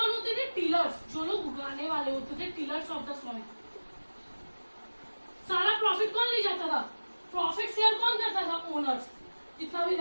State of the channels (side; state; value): both; inverted; correlation -1.00